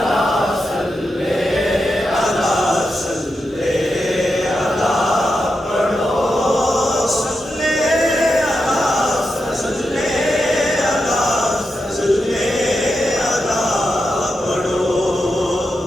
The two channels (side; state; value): both; normal; correlation 0.87